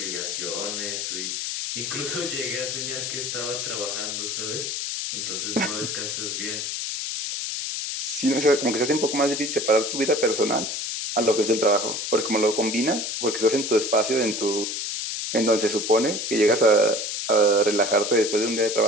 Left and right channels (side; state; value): left; noise; hiss, 3 dB below the sound